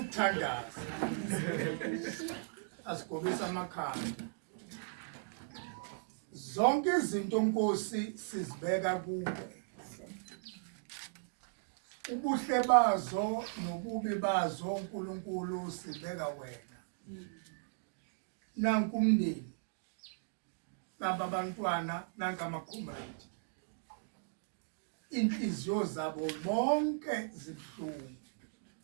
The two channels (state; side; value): silent; left; digital silence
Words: Asigobisa amakhanda. Zonke izinto Nkosi sizibeka kuwe. Ubuhle bazo nobubi bazo uNkulunkulu sibeka wena. Nanku umndeni. Naba bantwana nanka amakhomrade. Inhliziyo zabo bonke zibhlungu.